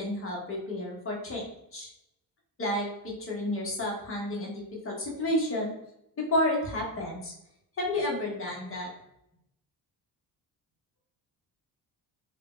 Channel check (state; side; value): normal; both; correlation -0.02